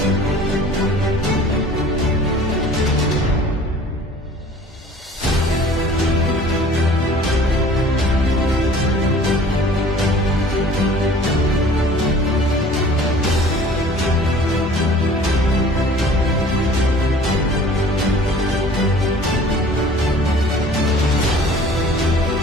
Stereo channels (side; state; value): both; normal; correlation 0.48